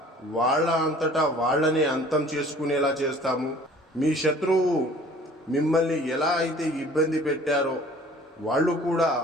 వాళ్ళ అంతటా వాళ్ళనే అంతం చేసుకునేలా చేస్తాము. మీ శత్రువు మిమ్మల్ని ఎలా అయితే ఇబ్బంది పెట్టారో వాళ్ళు కూడా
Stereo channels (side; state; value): both; normal; correlation 0.50